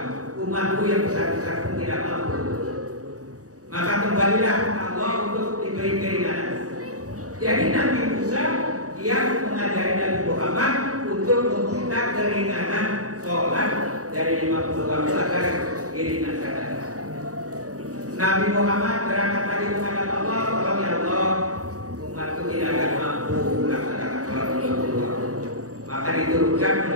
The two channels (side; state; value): left; late; 0.66 ms